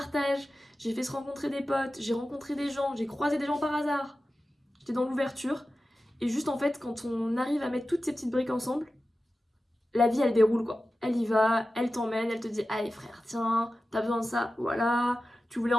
j'ai fait se rencontrer des potes, j'ai rencontré des gens, j'ai croisé des gens par hasard. J'étais dans l'ouverture. Et juste en fait, quand on arrive à mettre toutes ces petites briques ensemble, la vie elle déroule quoi. Elle y va, elle t'emmène, elle te dit allez frère, tiens, t'as besoin de ça, voilà, tu voulais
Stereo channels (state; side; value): normal; both; correlation 0.94